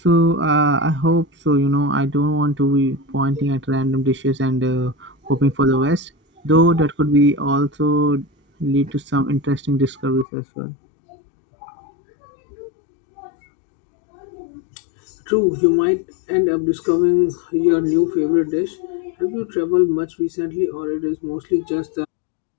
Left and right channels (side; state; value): right; drops out; at 10.2 s